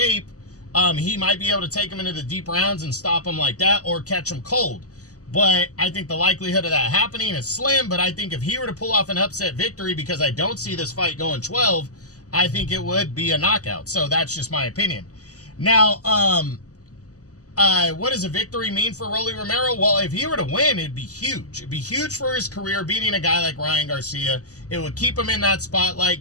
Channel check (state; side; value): late; right; 0.67 ms